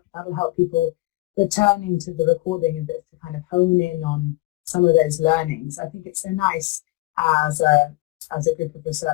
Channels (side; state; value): right; quieter; 21.0 dB